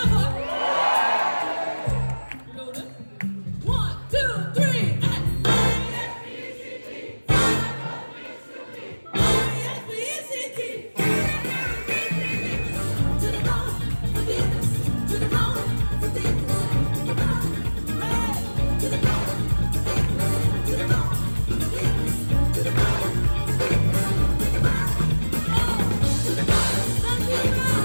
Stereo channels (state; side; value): inverted; both; correlation -1.00